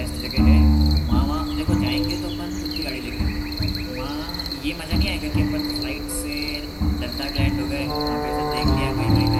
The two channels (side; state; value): both; identical; correlation 1.00